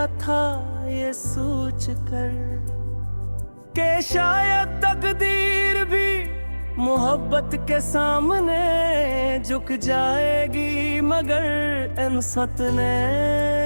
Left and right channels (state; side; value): inverted; both; correlation -1.00